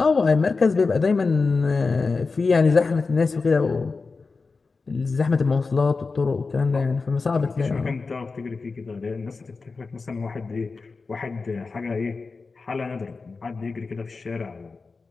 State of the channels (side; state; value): right; quieter; 4.3 dB